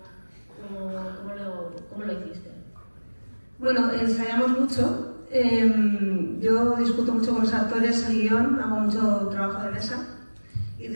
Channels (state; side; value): inverted; both; correlation -1.00